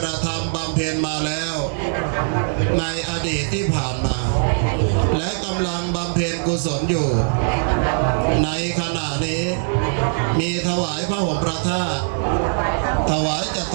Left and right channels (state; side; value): silent; left; digital silence